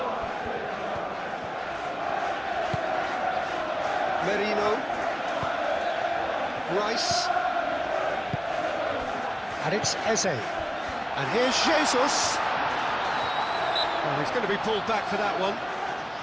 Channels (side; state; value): both; identical; correlation 1.00